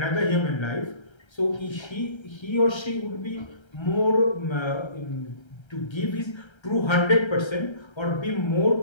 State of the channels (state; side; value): late; right; 1.3 ms